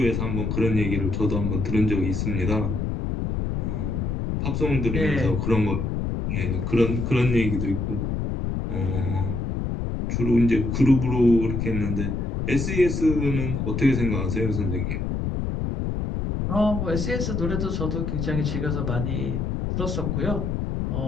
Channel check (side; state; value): left; noise; rumble, 1 dB below the sound